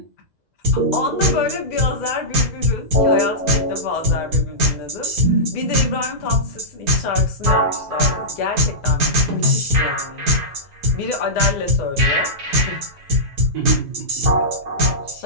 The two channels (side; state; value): left; late; 2.0 ms